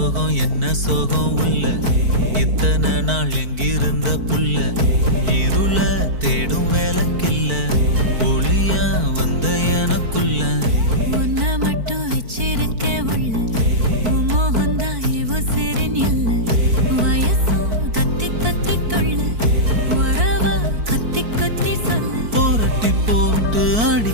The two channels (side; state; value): left; late; 4.5 ms